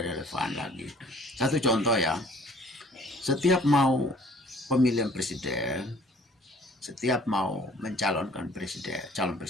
relevan lagi. Satu contoh ya, setiap mau pemilihan presiden, setiap mau mencalonkan calon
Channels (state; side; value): normal; both; correlation 0.55